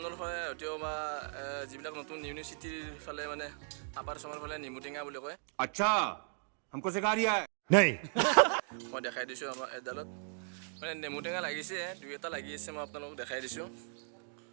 ফালে হয়তো বা যিবিলাক নতুন ইউনিভাৰ্চিটিৰ ফালে মানে আপাৰ আচামৰ ফালে নেমু টেঙা বুলি কয়। अच्छा हमको सिखा रिया है नहीं। মই দেখাই দিছোঁ আমাৰ এডালত মানে নেমু টেঙা লাগিছে, দুই এটা লাগি আছে, মই আপোনালোকক দেখাই দিছোঁ।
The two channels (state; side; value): silent; left; 53 dB below the other